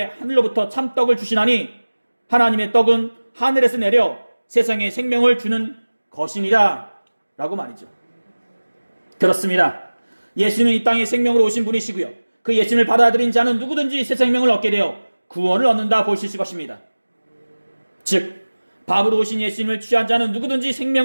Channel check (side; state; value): both; inverted; correlation -1.00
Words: 하늘로부터 참떡을 주시나니 하나님의 떡은 하늘에서 내려 세상에 생명을 주는 것이니라 라고 말이죠. 그렇습니다. 예수는 이 땅에 생명으로 오신 분이시고요, 그 예수님을 받아들인 자는 누구든지 새 생명을 얻게 되어 구원을 얻는다 볼 수 있을 것입니다. 즉 밥으로 오신 예수님을 취한 자는 누구든지